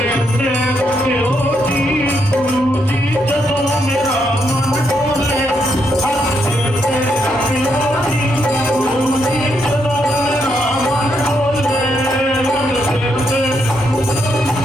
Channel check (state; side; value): normal; both; correlation 0.78